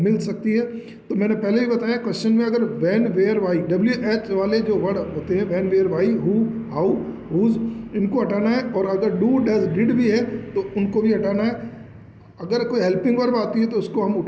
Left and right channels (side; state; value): both; identical; correlation 1.00